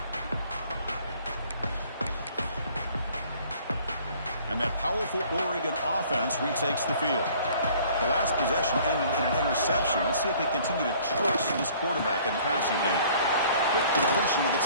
And that powerful Oregon offense retakes the field. The last possession ended in an interception. Let's see if they continue to trust this quarterback in the passing game. Quick completion to the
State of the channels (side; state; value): both; inverted; correlation -0.55